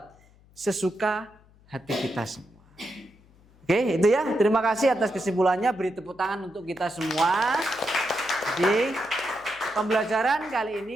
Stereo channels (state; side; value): noise; left; hum, 28 dB below the sound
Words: sesuka hati kita semua. Oke, itu ya. Terima kasih atas kesimpulannya. Beri tepuk tangan untuk kita semua. Jadi pembelajaran kali